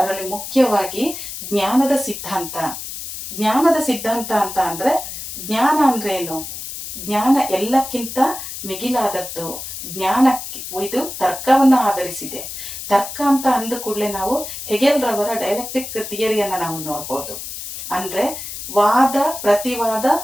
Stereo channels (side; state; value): left; noise; hiss, 9 dB below the sound